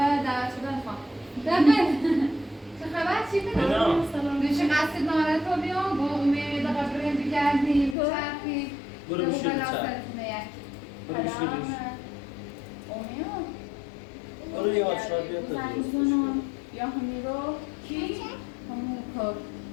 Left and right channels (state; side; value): drops out; right; at 8.0 s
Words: دعوت شدن خواهم دقیقه چه خبر چی کنم؟ دوشه قصد نارت رو بیام با امید قبرین بگردیم بچرخیم برو بشه بچرخ برو بشه امید برو یه آچار بیا تا زنگزونم یا همی رو کی؟ همون کار